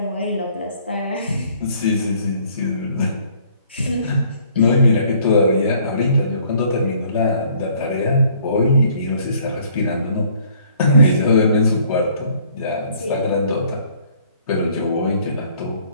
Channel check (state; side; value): inverted; both; correlation -0.60